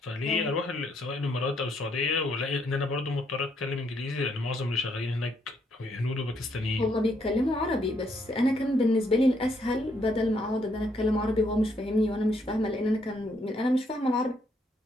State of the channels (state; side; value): normal; both; correlation 0.73